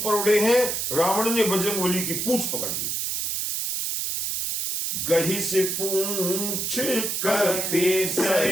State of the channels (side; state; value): right; noise; hiss, 1 dB below the sound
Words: उड़े हैं, रावण ने बजरंगबली की पूंछ पकड़ ली। गही से पूंछ कपि